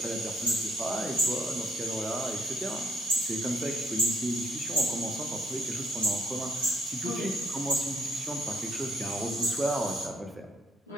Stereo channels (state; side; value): normal; both; correlation 0.66